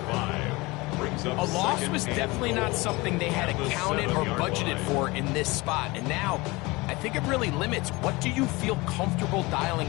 A loss was definitely not something they had accounted or budgeted for in this spot. And now, I think it really limits what do you feel comfortable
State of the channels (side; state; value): right; quieter; 23.1 dB